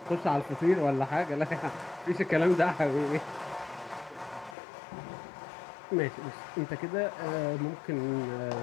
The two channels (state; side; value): drops out; right; at 4.5 s